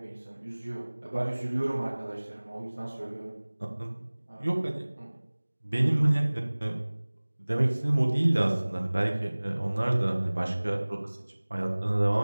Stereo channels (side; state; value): both; inverted; correlation -1.00